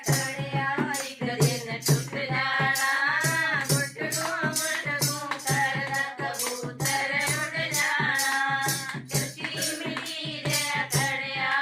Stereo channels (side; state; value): both; identical; correlation 1.00